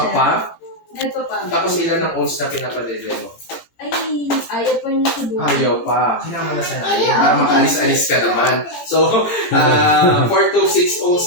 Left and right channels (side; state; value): right; late; 17 ms